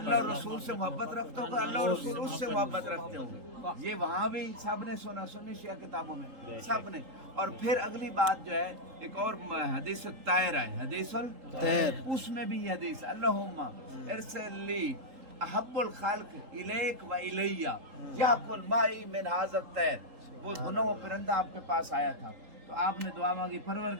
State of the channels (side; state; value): left; late; 3.8 ms